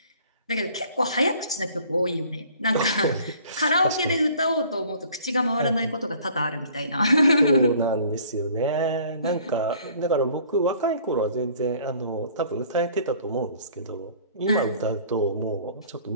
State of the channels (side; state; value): both; inverted; correlation -0.54